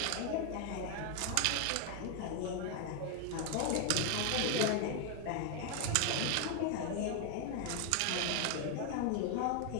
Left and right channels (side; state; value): both; different; correlation 0.01